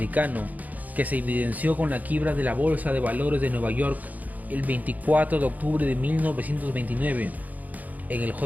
que se evidenció con la quiebra de la Bolsa de Valores de Nueva York el 24 de octubre de 1929, en el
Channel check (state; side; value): late; left; 0.079 ms